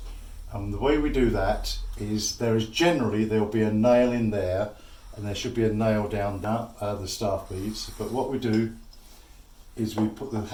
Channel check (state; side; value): identical; both; correlation 1.00